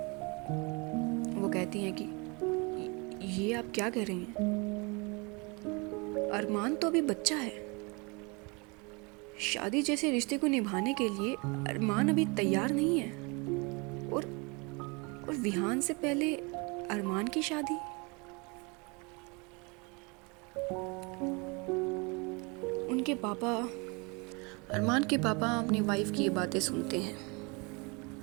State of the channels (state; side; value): quieter; left; 29.5 dB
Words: वो कहती हैं कि ये आप क्या कह रही हैं? अरमान तो अभी बच्चा है। शादी जैसे रिश्ते को निभाने के लिए अरमान अभी तैयार नहीं है। और विहान से पहले अरमान की शादी। अरमान के पापा अपनी वाइफ की ये बातें सुनते हैं।